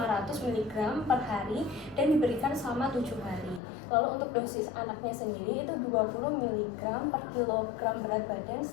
mg per hari dan diberikan selama 7 hari. Lalu untuk dosis anaknya sendiri itu 20 mg per kilogram berat badan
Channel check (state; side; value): drops out; right; at 3.6 s